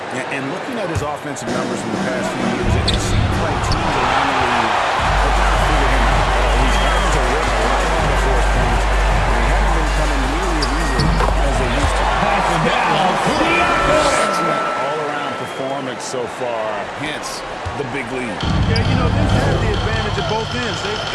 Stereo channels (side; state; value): both; identical; correlation 1.00